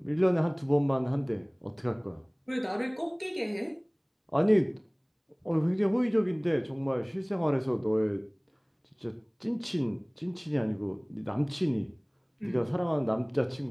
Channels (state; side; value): identical; both; correlation 1.00